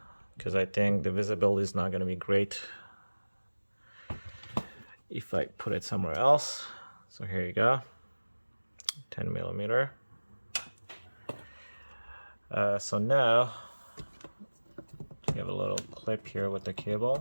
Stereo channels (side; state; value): both; inverted; correlation -1.00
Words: because I think the visibility is not going to be great if I put it somewhere else. So here you go, 10 millimeter. So now you have a little clip here with the